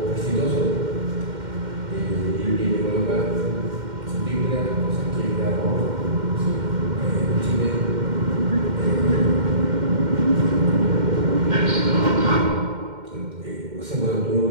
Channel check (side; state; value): left; late; 2.1 ms